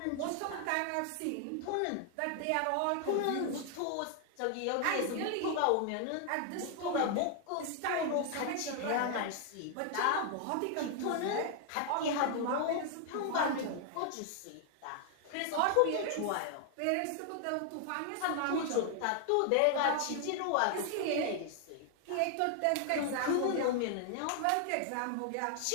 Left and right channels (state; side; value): different; both; correlation 0.00